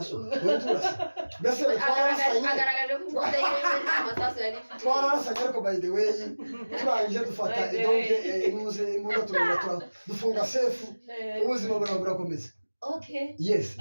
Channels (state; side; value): inverted; both; correlation -1.00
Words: wewe turasa bese agaragaje ko mudemo amasasu yari twarasanye ariko by the way turangije dufata donc imuze imuga turumva dufunga safe ubuzima burakomeza okay yes